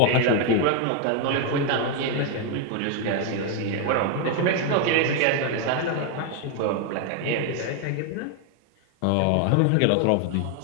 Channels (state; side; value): different; both; correlation 0.01